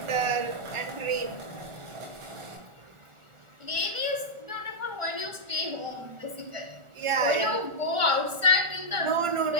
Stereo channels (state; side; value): late; left; 1.4 ms